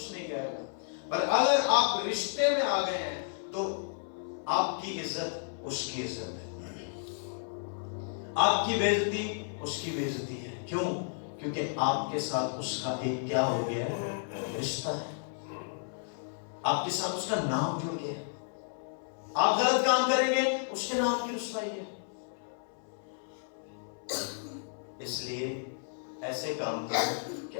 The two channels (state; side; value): silent; right; 56 dB below the other